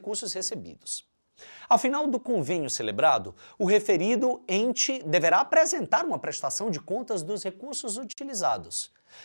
recebidos. Ao final do convênio celebrado, o referido ente deverá apresentar uma prestação de contas dos recursos utilizados,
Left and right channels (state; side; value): inverted; both; correlation -1.00